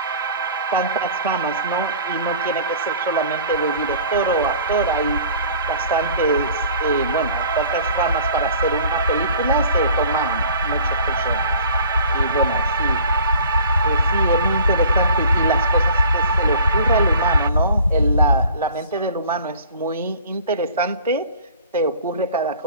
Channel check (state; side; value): inverted; both; correlation -0.48